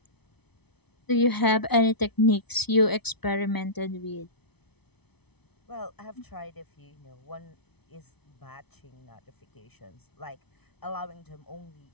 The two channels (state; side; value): late; right; 0.99 ms